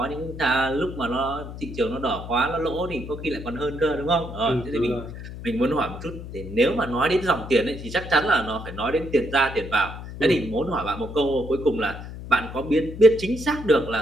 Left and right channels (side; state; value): left; noise; hum, 11 dB below the sound